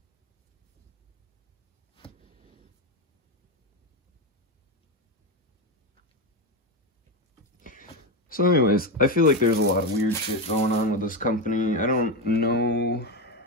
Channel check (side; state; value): both; normal; correlation 0.11